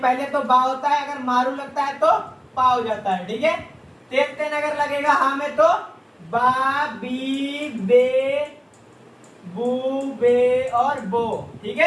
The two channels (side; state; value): both; identical; correlation 1.00